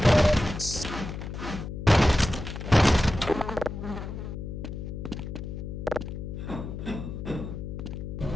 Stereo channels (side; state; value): left; noise; hum, 7 dB below the sound